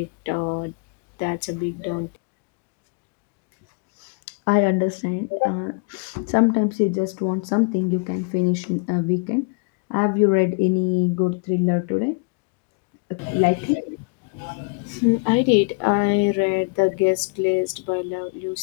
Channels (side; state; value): right; quieter; 33.0 dB